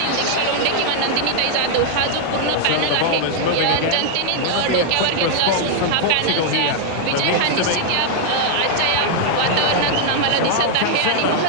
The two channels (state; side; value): different; both; correlation 0.00